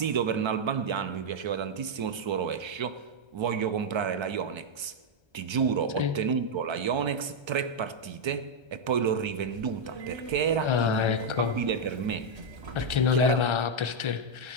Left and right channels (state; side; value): late; left; 1.3 ms